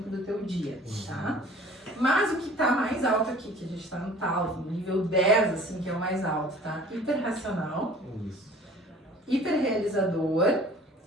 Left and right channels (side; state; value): both; normal; correlation 0.48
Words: do teu dia, tá? Mas o que está mais alto aqui, que a gente está no tal, no nível 10, assim, que é o mais alto, tá? Hiperracional, hiperrealizador